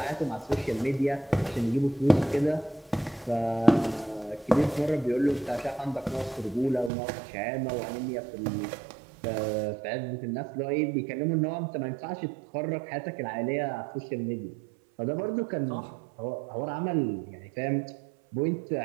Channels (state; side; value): drops out; left; at 6.9 s